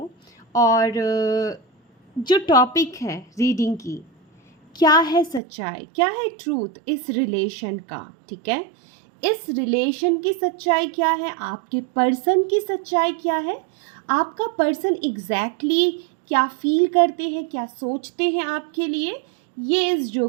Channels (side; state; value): left; drops out; at 5.4 s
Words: और जो टॉपिक है रीडिंग की, क्या है सच्चाई, क्या है ट्रूथ इस रिलेशन का। ठीक है, इस रिलेशन की सच्चाई क्या है, आपके पर्सन की सच्चाई क्या है, आपका पर्सन एग्जैक्टली क्या फील करते हैं, क्या सोचते हैं आपके लिए, ये इस